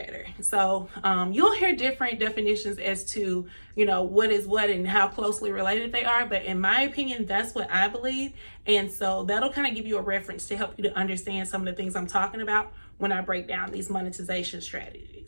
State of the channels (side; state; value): both; inverted; correlation -1.00